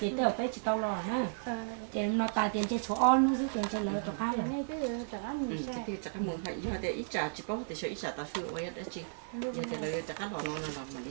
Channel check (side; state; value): left; silent; digital silence